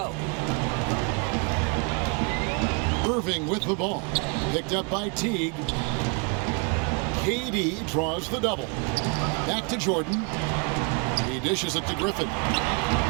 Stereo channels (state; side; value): quieter; left; 32.7 dB